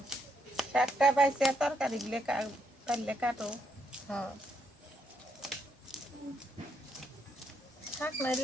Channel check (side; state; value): both; normal; correlation 0.77